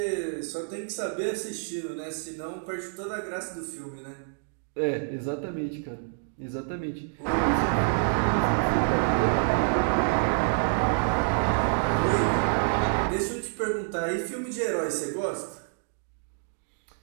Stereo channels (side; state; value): left; silent; digital silence